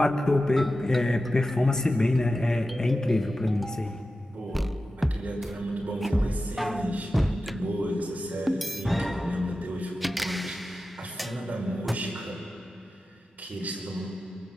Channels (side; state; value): both; normal; correlation 0.93